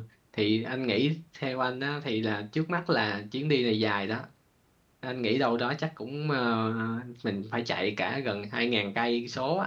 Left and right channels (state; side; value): identical; both; correlation 1.00